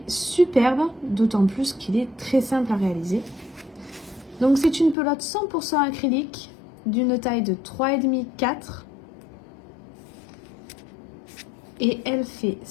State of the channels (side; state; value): right; drops out; at 5.0 s